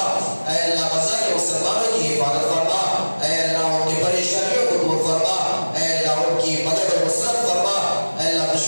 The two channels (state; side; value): inverted; both; correlation -1.00